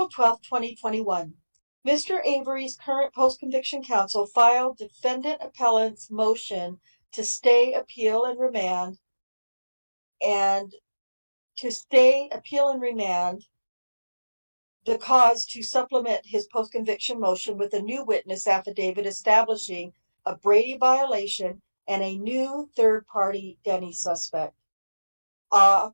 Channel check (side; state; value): both; inverted; correlation -1.00